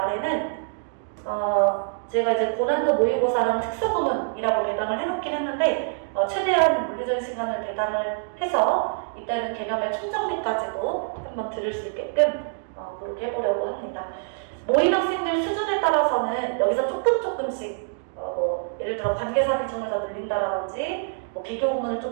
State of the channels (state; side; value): silent; left; digital silence